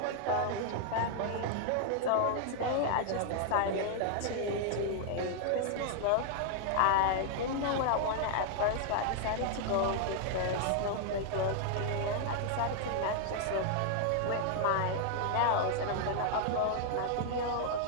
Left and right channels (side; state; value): both; different; correlation 0.00